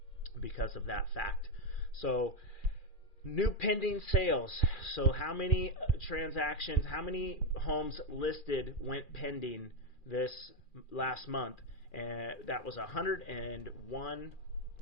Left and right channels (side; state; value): right; late; 2.4 ms